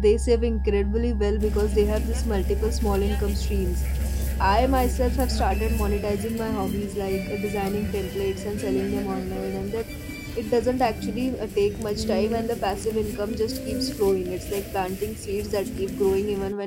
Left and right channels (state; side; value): identical; both; correlation 1.00